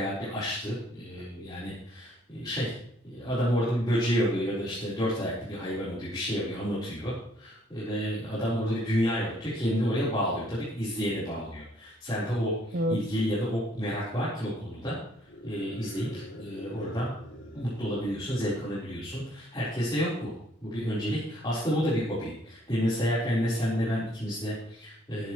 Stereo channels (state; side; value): normal; both; correlation 0.64